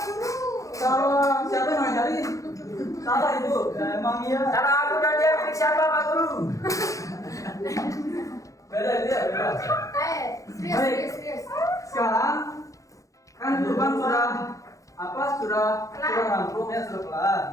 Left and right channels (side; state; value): right; late; 0.16 ms